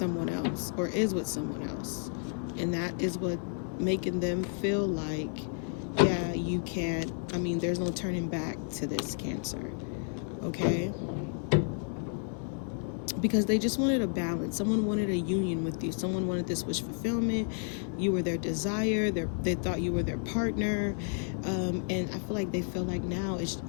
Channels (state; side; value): silent; right; 57 dB below the other